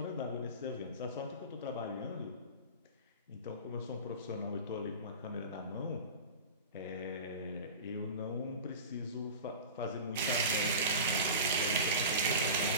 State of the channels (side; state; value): both; inverted; correlation -0.31